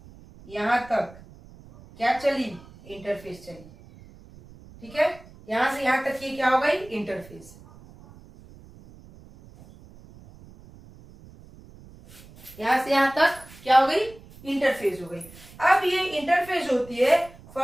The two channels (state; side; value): noise; right; rumble, 21 dB below the sound